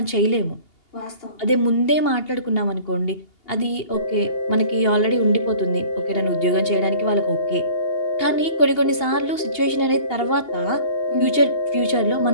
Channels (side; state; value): right; late; 2.8 ms